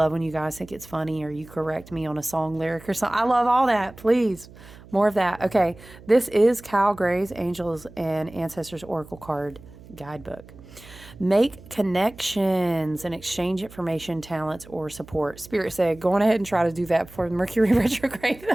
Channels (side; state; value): right; noise; hum, 20 dB below the sound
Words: when you guys think it's funny or you correct me on a song lyric or something. I love all that. Please, more of that. Okay, this is Cal Gray's Angels and Ancestors Oracle Card Guidebook. Make connections and exchange information, talents, or support. Spirit said, go on ahead and try to do that before Mercury retrograde,